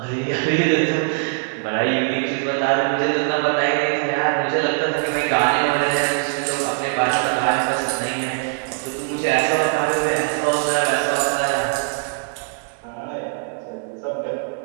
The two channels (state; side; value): silent; left; 65 dB below the other